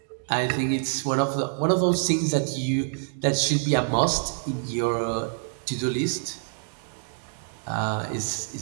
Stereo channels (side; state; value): left; silent; digital silence